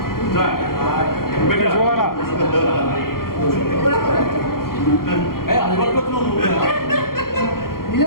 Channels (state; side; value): late; right; 0.93 ms